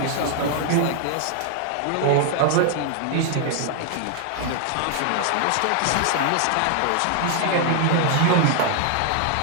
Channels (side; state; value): both; different; correlation 0.00